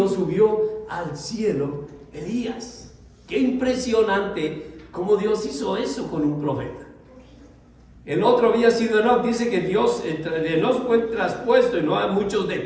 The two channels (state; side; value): identical; both; correlation 1.00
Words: subió al cielo Elías. Qué impresionante cómo Dios hizo eso con un profeta. El otro había sido Enoch. Dice que Dios, Enoch fue traspuesto, y no hay muchos